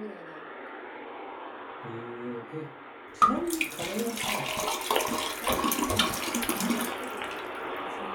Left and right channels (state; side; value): identical; both; correlation 1.00